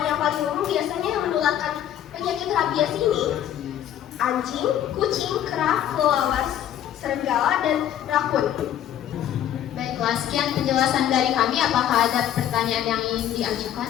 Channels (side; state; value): right; quieter; 10.9 dB